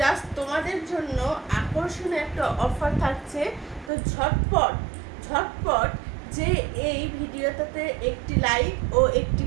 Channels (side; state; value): left; drops out; at 3.9 s